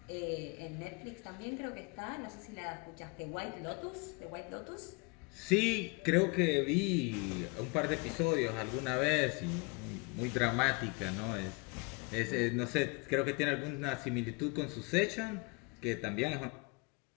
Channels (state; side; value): quieter; right; 29.2 dB